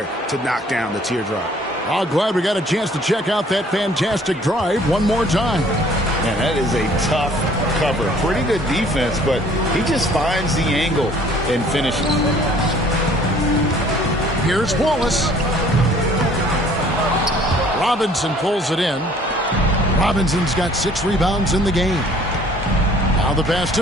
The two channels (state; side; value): normal; both; correlation 0.56